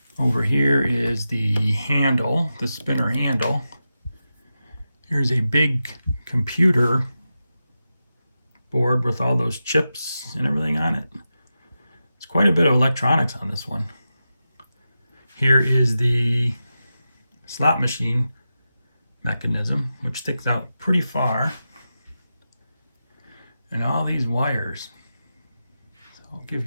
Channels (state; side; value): inverted; both; correlation -0.91